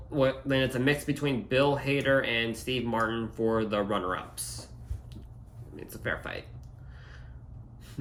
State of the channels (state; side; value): identical; both; correlation 1.00